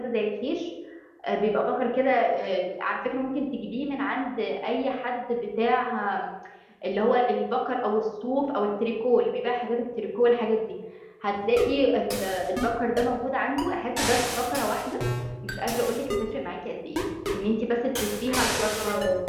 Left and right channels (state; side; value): identical; both; correlation 1.00